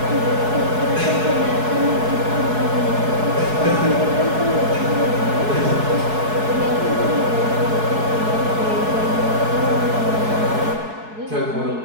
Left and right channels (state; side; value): late; left; 4.7 ms